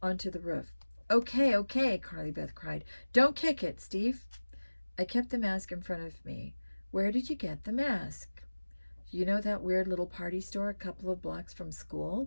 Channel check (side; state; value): both; inverted; correlation -1.00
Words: onto the roof. Okay, okay, Carly Beth cried. Don't kick it, Steve. I kept the mask in front of me. Where did you get the mask? You know that weird little party store a couple of blocks from